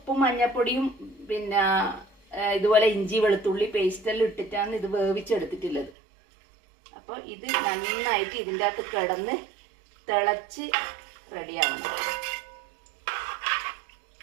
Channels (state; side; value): drops out; left; at 5.9 s